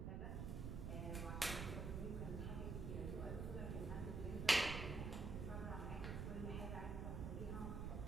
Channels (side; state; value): right; noise; rumble, 2 dB below the sound